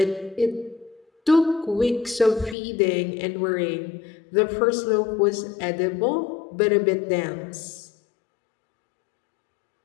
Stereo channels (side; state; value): right; drops out; at 2.6 s